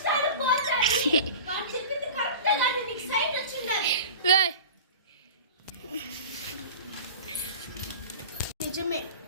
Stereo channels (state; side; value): inverted; both; correlation -0.36